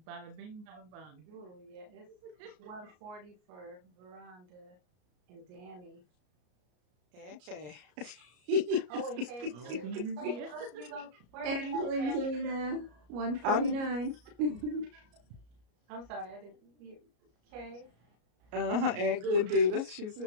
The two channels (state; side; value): late; left; 33 ms